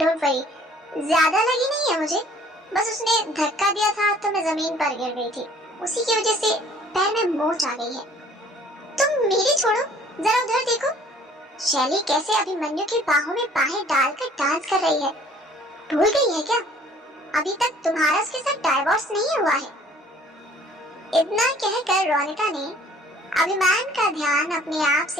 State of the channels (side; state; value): both; normal; correlation 0.55